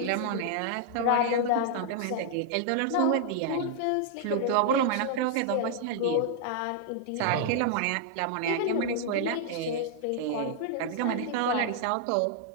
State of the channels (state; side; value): different; both; correlation -0.01